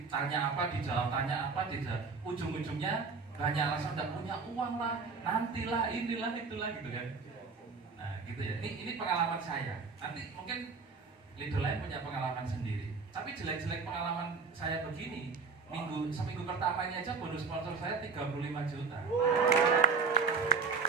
tanya apa, dijawab tanya apa, ujung-ujungnya banyak alasan tidak punya uang lah, nantilah, inilah, itulah gitu kan. Nah gitu ya, ini pengalaman saya. Nanti mungkin leader lain punya pengalaman sendiri. Tapi jelek-jelek pengalaman saya begini, seminggu pertama ini aja bonus sponsor saya 35 juta.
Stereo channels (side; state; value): left; quieter; 4.9 dB